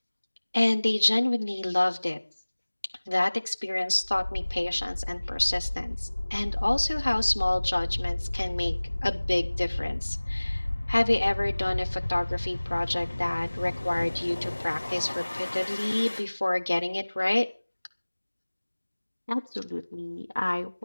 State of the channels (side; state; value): both; inverted; correlation -1.00